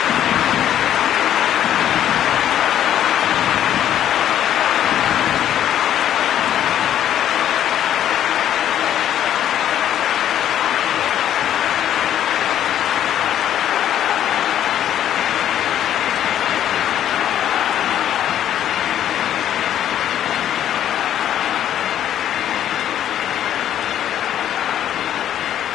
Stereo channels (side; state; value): right; quieter; 10.9 dB